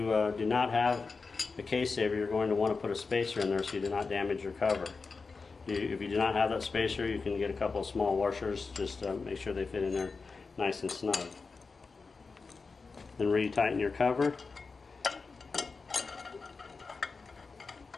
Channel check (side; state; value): right; quieter; 4.4 dB